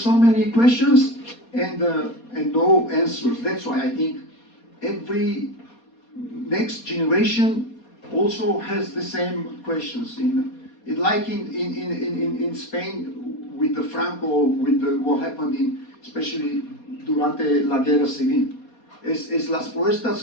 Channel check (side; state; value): right; late; 4.2 ms